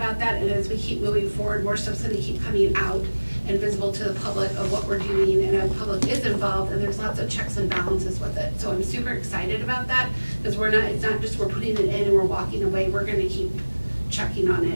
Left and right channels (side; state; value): both; inverted; correlation -1.00